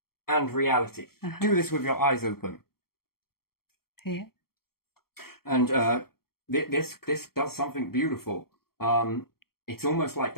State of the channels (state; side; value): late; right; 0.94 ms